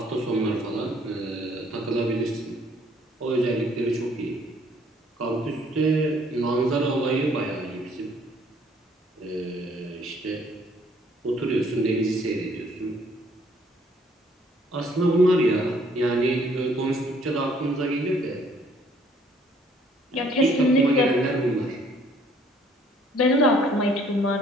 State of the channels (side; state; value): both; normal; correlation 0.62